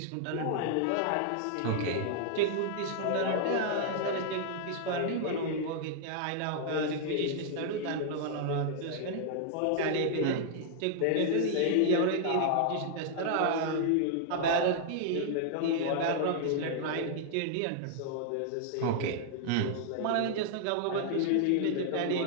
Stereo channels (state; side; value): different; both; correlation -0.01